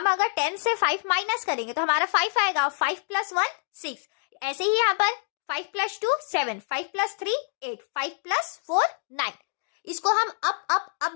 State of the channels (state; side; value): silent; right; digital silence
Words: अगर 10 से 5 माइनस करेंगे तो हमारा 5 आएगा। 5 + 1 6। ऐसे ही यहाँ पर 5 + 2 7, 5 + 3 8, 5 + 4 9। इसको हम अप